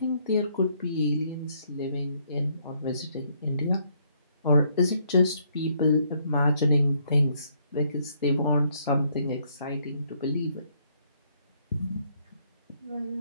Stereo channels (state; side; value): inverted; both; correlation -0.70